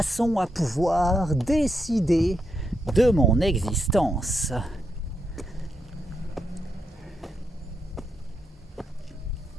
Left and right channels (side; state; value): both; normal; correlation 0.82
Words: à pouvoir décider de mon existence.